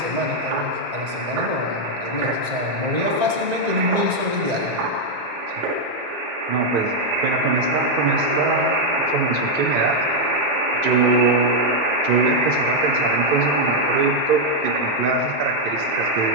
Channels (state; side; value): late; left; 1.9 ms